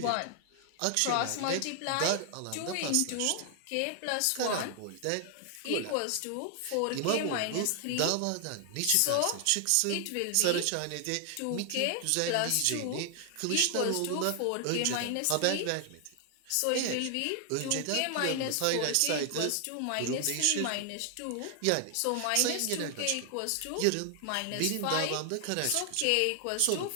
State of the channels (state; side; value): different; both; correlation 0.00